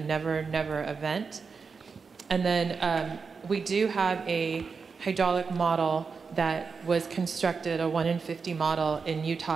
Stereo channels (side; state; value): left; quieter; 5.2 dB